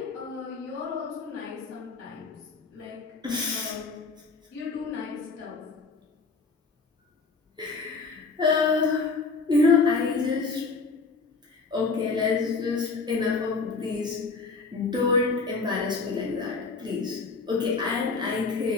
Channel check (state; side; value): quieter; right; 4.3 dB